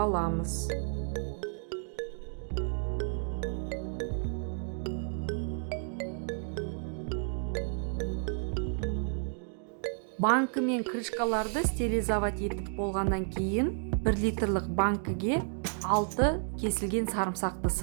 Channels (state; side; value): silent; left; 57 dB below the other